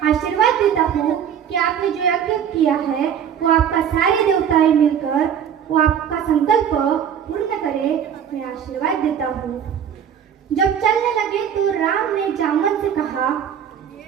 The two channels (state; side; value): quieter; left; 8.6 dB